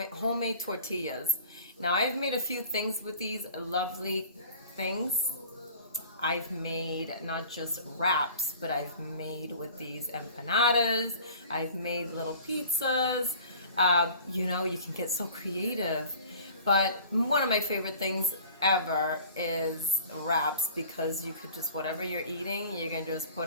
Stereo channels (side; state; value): both; inverted; correlation -0.45